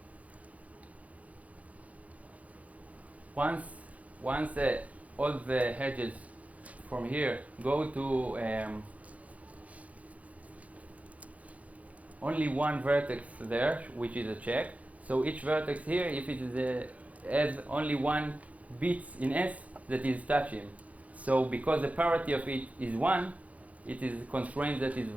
Once all the hedges from here go to only one vertex there, which is a check. So each vertex here, if it is has only one bit in S that is touching. So because the parity of it is 1, it is a constraint that is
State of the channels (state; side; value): late; left; 0.068 ms